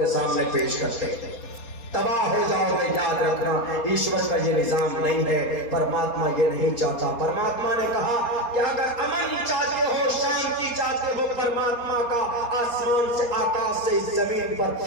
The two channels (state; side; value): late; right; 4.2 ms